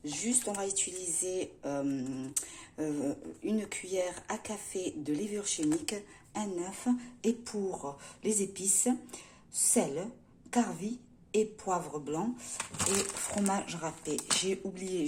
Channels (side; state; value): both; identical; correlation 1.00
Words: Juste, on va utiliser une cuillère à café de levure chimique, un œuf, et pour les épices, sel, carvi et poivre blanc et fromage râpé. J'ai oublié